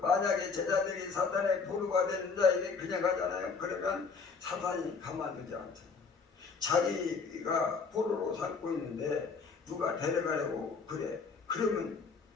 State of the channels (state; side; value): quieter; right; 4.9 dB